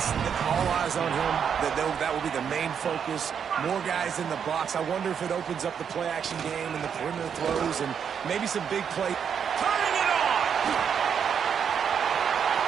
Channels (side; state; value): left; quieter; 7.5 dB